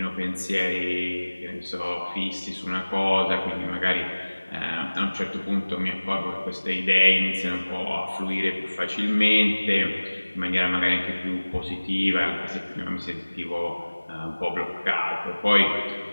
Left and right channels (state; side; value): inverted; both; correlation -1.00